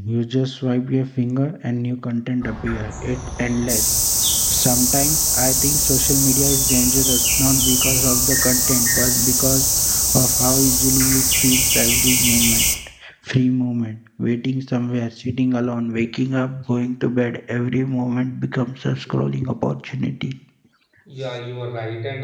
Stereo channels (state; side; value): identical; both; correlation 1.00